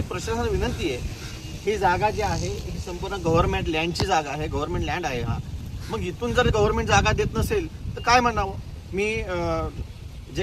प्रशासनाला विनंती आहे, ही जागा जी आहे ही संपूर्ण गव्हर्नमेंट लँडची जागा आहे, गव्हर्नमेंट लँड आहे हा। मग इथून जर गव्हर्नमेंट जागा देत नसेल तर काय म्हणावं। मी जे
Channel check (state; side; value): identical; both; correlation 1.00